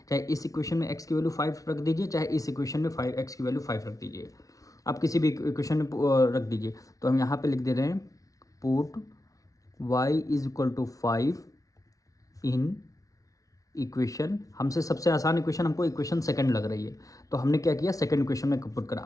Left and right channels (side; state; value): right; late; 0.17 ms